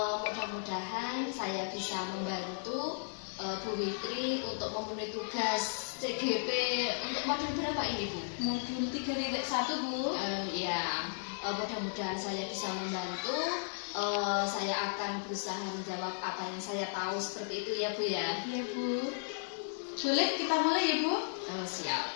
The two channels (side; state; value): right; silent; 54 dB below the other